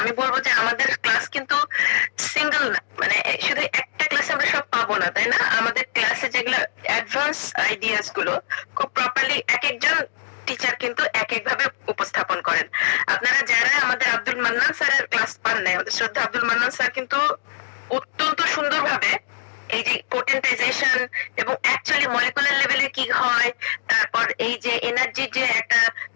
আমি বলবো যে আমাদের ক্লাস কিন্তু সিঙ্গেল না, মানে শুধু একটা ক্লাসে আমরা সব পাবো না, তাই না? আমাদের ক্লাসে যেগুলো অ্যাডভান্স আইডিয়াস গুলো খুব প্রপারলি এক একজন টিচার কিন্তু এক এক ভাবে উপস্থাপন করেন। আপনারা যারা আমাদের আব্দুল মান্নান স্যারের ক্লাস পান নাই, আমাদের শ্রদ্ধা আব্দুল মান্নান স্যার কিন্তু অত্যন্ত সুন্দরভাবে এই যে পোটেন্টাইজেশন এবং অ্যাকচুয়ালি মলিকুলার লেভেলে কি হয়, তারপর এই যে এনার্জির যে একটা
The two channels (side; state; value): right; silent; 64 dB below the other